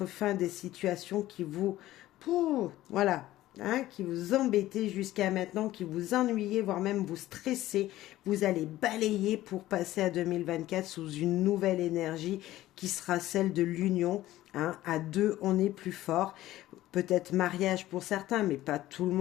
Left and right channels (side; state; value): right; quieter; 15.3 dB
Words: fin à des situations qui vous... voilà, hein, qui vous embêtaient jusqu'à maintenant, qui vous ennuyaient, voire même vous stressez. Vous allez balayer pour passer à 2024 sous une nouvelle énergie qui sera celle de l'union. Hein. À deux, on est plus fort. Peut-être mariage pour certains, mais pas tout le